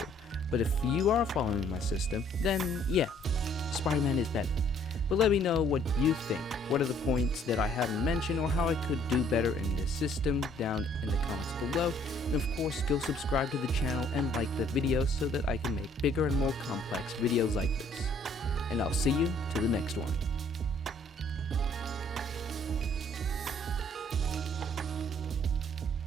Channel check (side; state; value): both; normal; correlation 0.62